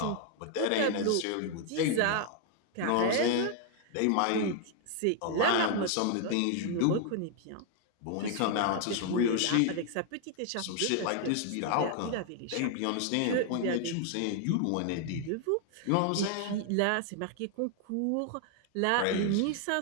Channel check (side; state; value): both; different; correlation 0.00